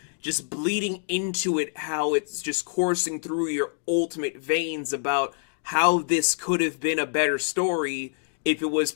Just bleeding into it, how it's just coursing through your ultimate veins about how this could have been a better story if it was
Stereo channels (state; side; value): silent; right; digital silence